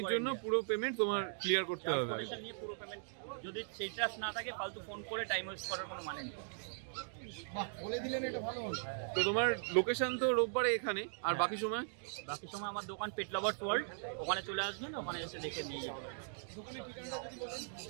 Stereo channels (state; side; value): silent; left; digital silence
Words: জন্য পুরো পেমেন্ট তোমার ক্লিয়ার করতে হবে। নিয়ে পুরো পেমেন্ট, যদি সেই ট্রাস্ট না থাকে ফালতু ফোন করে টাইম ওয়েস্ট করার কোনো মানে নেই। তো তোমার লোকেশন তো রোববারে এখানে, আর বাকি সময় আমার দোকান পেট লাভার্স ওয়ার্ল্ড, ওখানে চলে আসবেন, ওখানে এসে দেখে নিয়ে যাবেন।